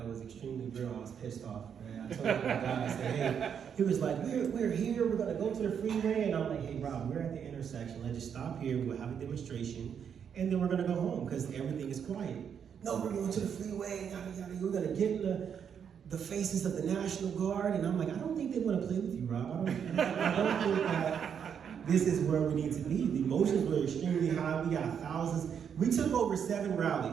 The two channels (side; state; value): left; quieter; 7.7 dB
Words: was extremely real. I was pissed off, right? I told the guy, I said, hey, he was like, we're here, we're gonna go to the freeway. And I'm like, hey, Rob, we're at the intersection. Let's just stop here, we'll have a demonstration, and then we're gonna go home because everything is quiet. No, we're going to the freeway, yada, yada, we're gonna get in the the faces of the National Guard, and I'm like, I don't think they want to play with you, Rob. I don't think that this is where we need to be. The emotions were extremely high. We got thousands. We took over 7